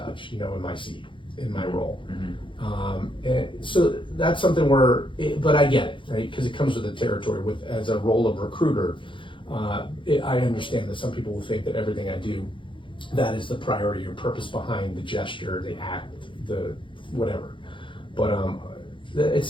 in my seat, in my role. And so that's something but I get it, right? Because it comes with the territory. As a role of recruiter, I understand that some people will think that everything I do, that is the priority or purpose behind the gesture, the act, the whatever. But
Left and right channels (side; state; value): right; late; 0.24 ms